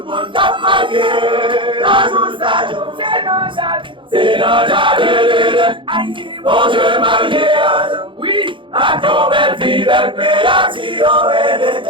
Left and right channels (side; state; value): left; late; 0.24 ms